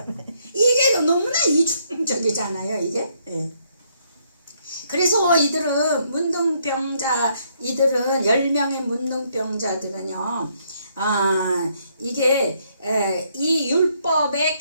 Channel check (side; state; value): both; inverted; correlation -0.71